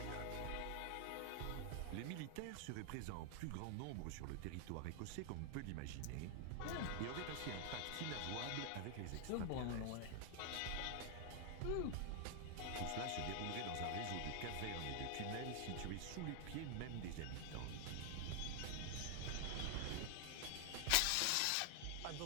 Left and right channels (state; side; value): different; both; correlation 0.00